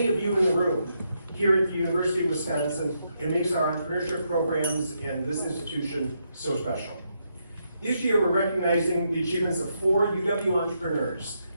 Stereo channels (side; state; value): both; inverted; correlation -0.80